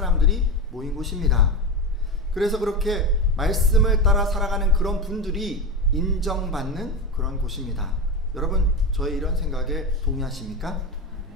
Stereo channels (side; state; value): both; normal; correlation 0.19